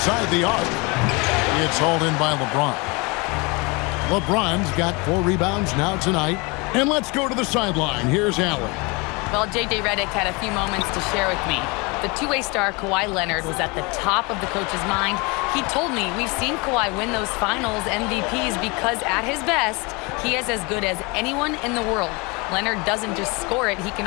the arc, it's hauled in by LeBron. LeBron's got 4 rebounds now tonight. And let's go to the sideline. Here's Allen. Well, J.J. Redick had a few moments to share with me. The two-way star Kawhi Leonard was at the top of the coach's mind. He told me, we've seen Kawhi win those finals MVPs because at his best, he is as good as anyone in the world. Leonard doesn't just score it, he can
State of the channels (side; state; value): right; quieter; 27.9 dB